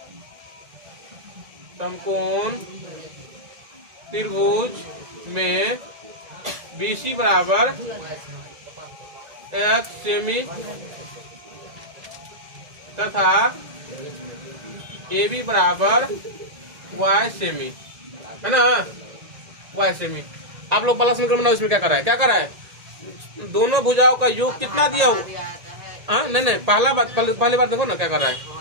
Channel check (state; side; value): late; left; 1.8 ms